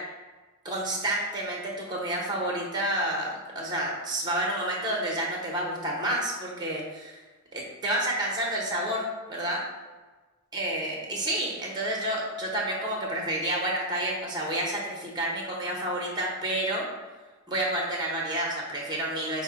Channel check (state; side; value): normal; both; correlation -0.04